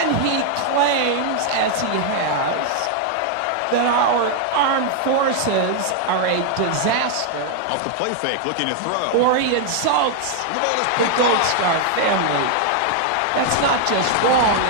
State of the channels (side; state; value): both; different; correlation 0.00